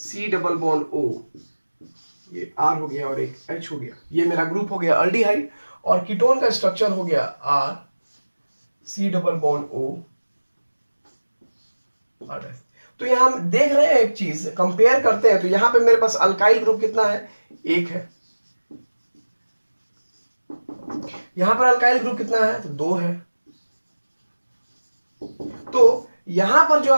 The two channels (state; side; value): inverted; both; correlation -1.00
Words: C डबल बॉन्ड O, ये R हो गया और एक H हो गया, ये मेरा ग्रुप हो गया अल्डिहाइड, और कीटोन का स्ट्रक्चर हो गया R C double bond O R dash. तो यहां हम देख रहे हैं एक चीज, कंपेयर करते हैं, तो यहां पे मेरे पास अल्काइल ग्रुप कितना है, 1 है। यहां पर अल्काइल ग्रुप कितना है, तो 2 है। तो यहां पर जो